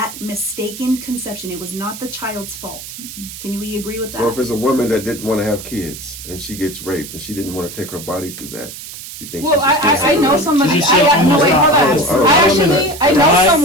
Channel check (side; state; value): right; noise; hiss, 12 dB below the sound